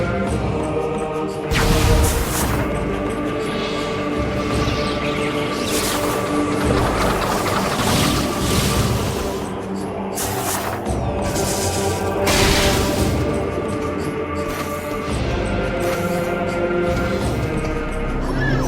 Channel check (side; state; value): both; identical; correlation 1.00